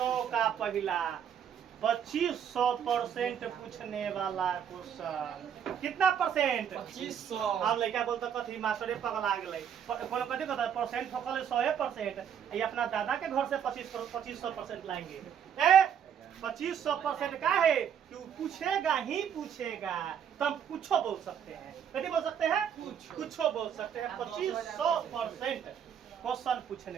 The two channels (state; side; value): quieter; left; 8.5 dB